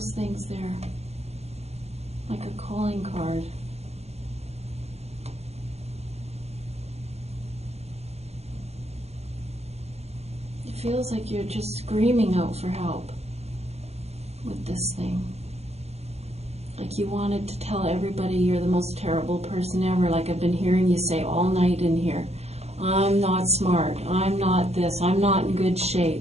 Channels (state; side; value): late; left; 0.31 ms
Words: things there? Like a calling card. It feels like you're just screaming out for help with this thing. Like you wanted to tell everybody you're the most terrible person ever, like I've been hearing you say all night in here. I'm not smart, I'm not this, I'm not in good